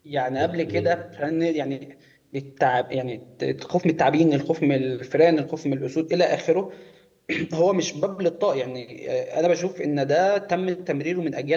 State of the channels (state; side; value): identical; both; correlation 1.00